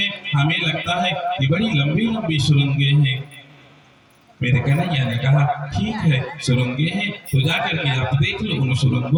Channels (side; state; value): both; identical; correlation 1.00